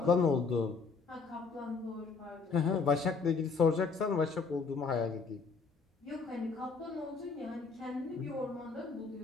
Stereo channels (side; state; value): right; quieter; 4.8 dB